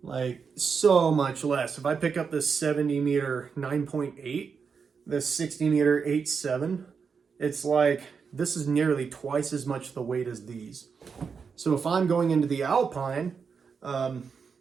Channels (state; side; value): quieter; left; 5.8 dB